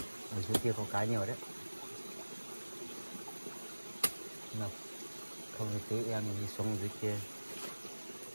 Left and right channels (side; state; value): both; inverted; correlation -1.00